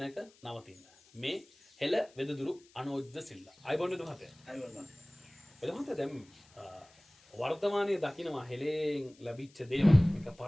නවතින්න. මේ හෙළ වෙදදුරු අනෝජ්ද සිල්ලා. අයිබෝන් වෙද මහත්තයා. අයිබෝන්. වෙද මහත්තයා දැන් වර්තමානයේ දකින්නවා හෙළෙන් ලැබිච්ච දේවල්. මේක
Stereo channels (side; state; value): left; noise; hiss, 28 dB below the sound